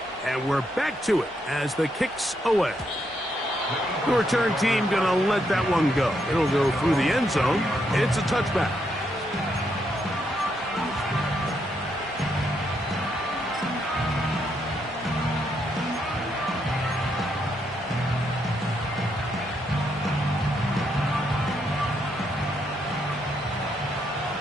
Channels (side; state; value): both; normal; correlation 0.77